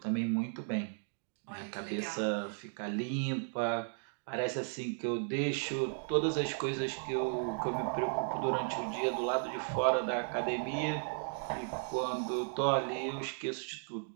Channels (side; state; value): left; silent; 54 dB below the other